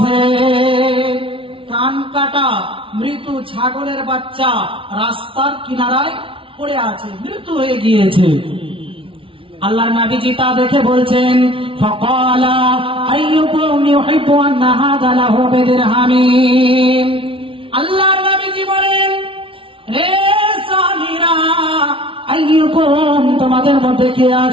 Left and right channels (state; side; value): late; left; 0.25 ms